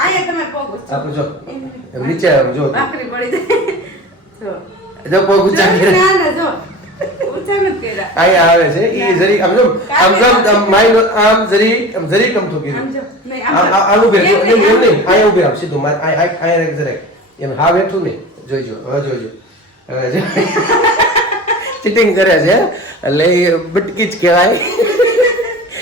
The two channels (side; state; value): both; normal; correlation 0.35